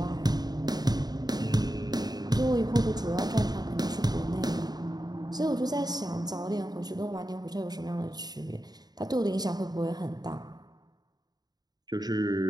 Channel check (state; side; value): late; left; 0.19 ms